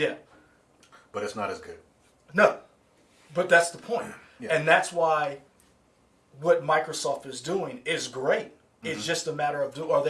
But it's not as good. No. But that's the point. Yeah. And that's why what Microsoft is doing is great. It's just a matter of are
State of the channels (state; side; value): identical; both; correlation 1.00